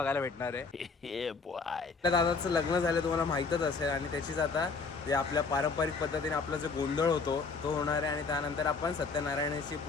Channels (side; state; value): right; quieter; 4.6 dB